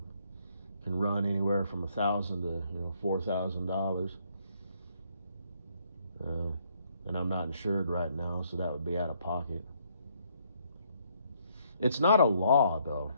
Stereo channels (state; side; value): inverted; both; correlation -0.69